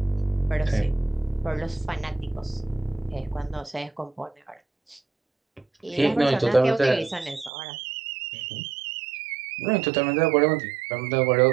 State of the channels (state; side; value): drops out; left; at 7.5 s